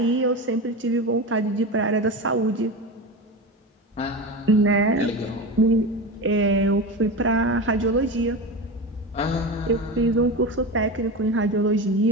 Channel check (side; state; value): both; normal; correlation 0.24